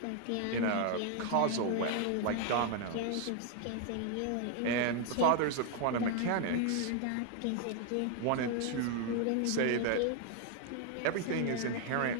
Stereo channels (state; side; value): different; both; correlation 0.00